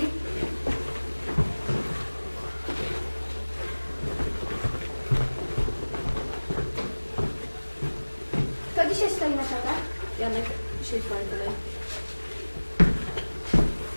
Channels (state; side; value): inverted; both; correlation -1.00